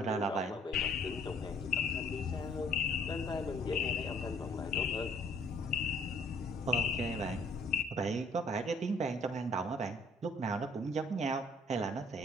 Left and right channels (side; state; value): both; normal; correlation 0.60